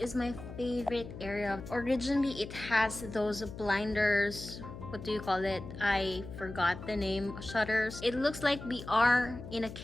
my favorite area. Originally, it has those blinders. What do you call it? I forgot the name. Shutters. It looks like we are in a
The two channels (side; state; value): left; noise; hum, 12 dB below the sound